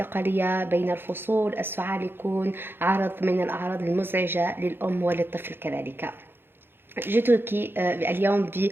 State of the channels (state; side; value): late; left; 0.10 ms